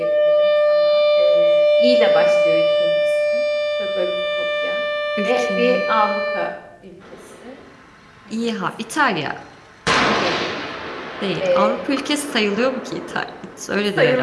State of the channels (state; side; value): identical; both; correlation 1.00